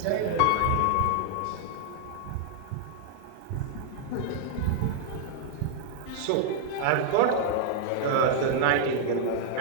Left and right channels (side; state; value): both; different; correlation -0.01